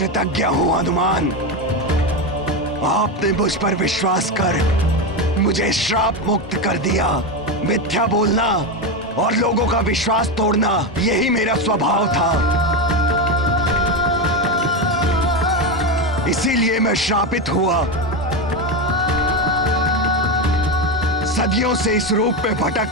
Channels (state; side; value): normal; both; correlation 0.14